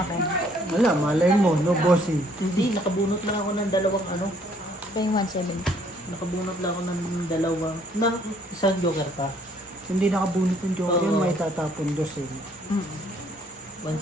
Wala, malay mo, no bossing. Hindi, nakabunot lang ako ng dalawang ano. Ito yung 170. Nakabunot lang ako ng dalawang, ng isang joker pa. Hindi nakabunot yung joker yun, Oo. may tatapon dos eh.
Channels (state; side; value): normal; both; correlation 0.63